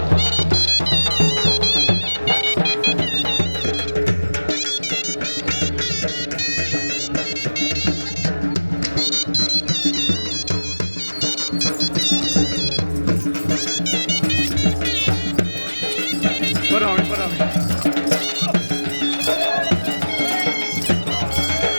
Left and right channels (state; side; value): inverted; both; correlation -1.00